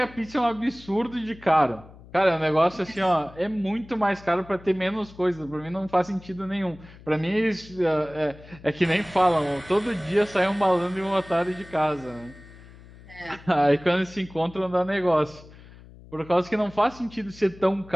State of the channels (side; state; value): left; noise; hum, 20 dB below the sound